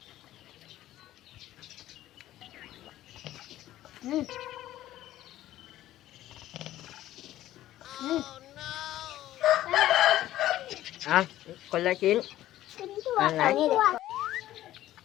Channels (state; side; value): quieter; right; 14.0 dB